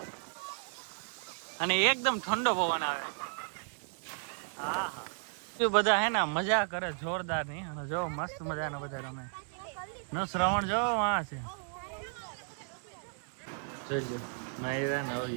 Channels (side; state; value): left; silent; 55 dB below the other